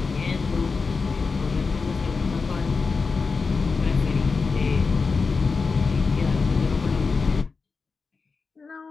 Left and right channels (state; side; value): quieter; right; 4.6 dB